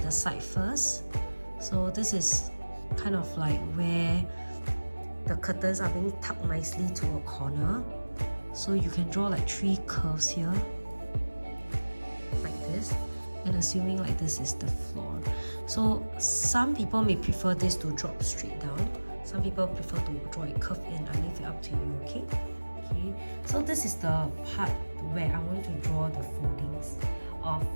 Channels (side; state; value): both; inverted; correlation -1.00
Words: the side first. So this is kind of like where the curtains are being tucked nicely to a corner. So you can draw like 3 curves here, like this, and assuming like this is the floor. So some people may prefer this to drop straight down. Some people prefer to draw it curved in. I leave it up to you, okay? Okay. So this is the part where I want to draw the foldings of